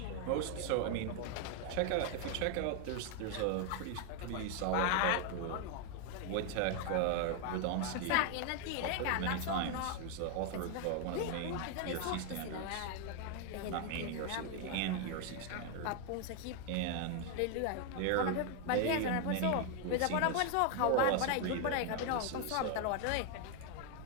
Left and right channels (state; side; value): different; both; correlation 0.01